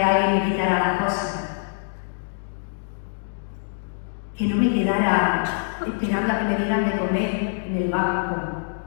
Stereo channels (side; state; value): right; silent; digital silence